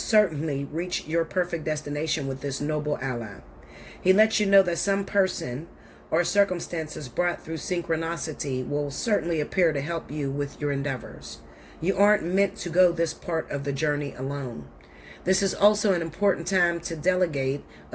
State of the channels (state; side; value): identical; both; correlation 1.00